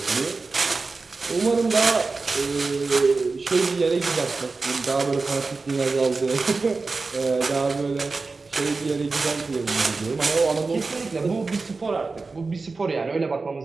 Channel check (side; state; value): left; quieter; 4.0 dB